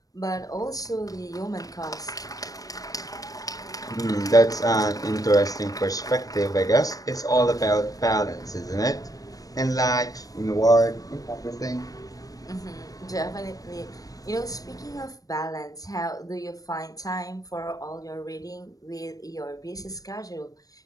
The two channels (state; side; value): late; right; 0.18 ms